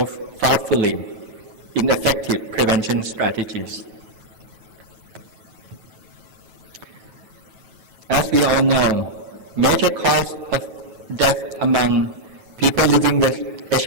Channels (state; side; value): late; left; 9.2 ms